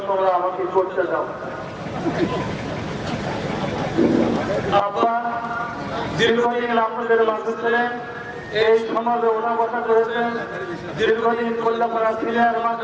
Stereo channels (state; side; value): identical; both; correlation 1.00